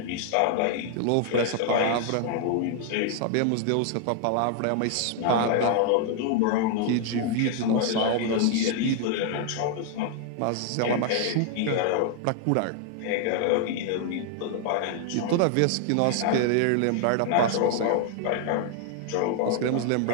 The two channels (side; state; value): both; different; correlation 0.00